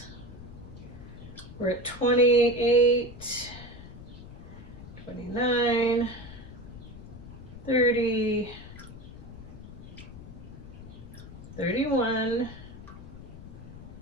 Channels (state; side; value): noise; left; rumble, 14 dB below the sound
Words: We're at 28, 29, 30, 31.